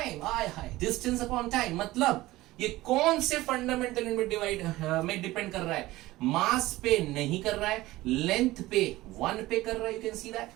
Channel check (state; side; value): quieter; left; 17.9 dB